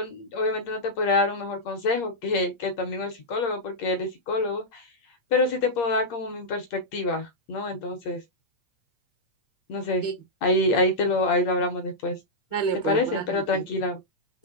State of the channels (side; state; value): right; late; 8.5 ms